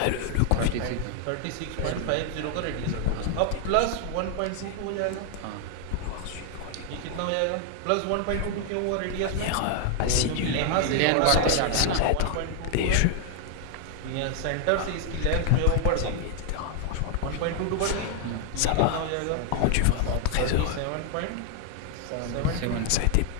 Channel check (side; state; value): both; different; correlation 0.00